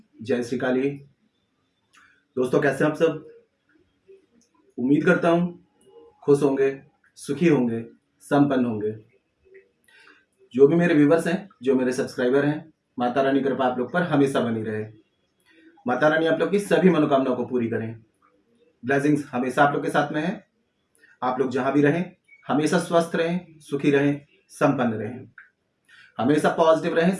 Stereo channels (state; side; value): identical; both; correlation 1.00